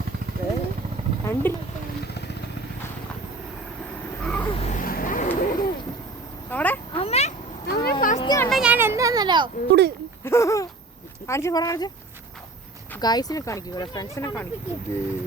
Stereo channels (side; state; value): left; quieter; 3.3 dB